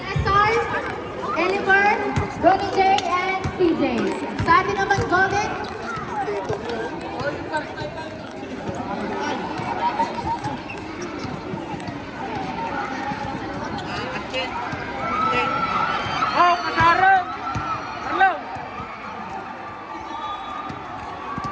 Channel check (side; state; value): both; identical; correlation 1.00